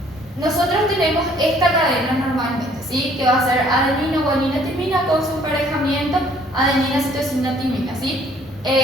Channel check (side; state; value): both; normal; correlation 0.60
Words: Nosotros tenemos esta cadena normalmente, ¿sí? Que va a ser adenina, guanina, timina con su emparejamiento adenina, citosina, timina, ¿sí?